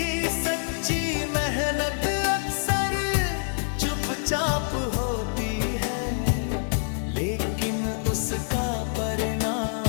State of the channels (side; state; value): right; silent; digital silence